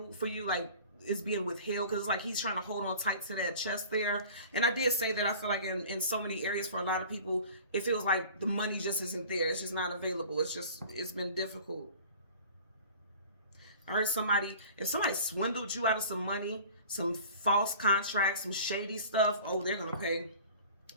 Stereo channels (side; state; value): both; inverted; correlation -0.43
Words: for you, like it's being withheld, because it's like he's trying to hold on tight to that chest there. And I did say that I feel like in so many areas for a lot of people, it feels like the money just isn't there. It's just not available. It's been difficult. I heard if somebody swindled you out of some money, some false contracts, some shady stuff, oh, they're going to pay.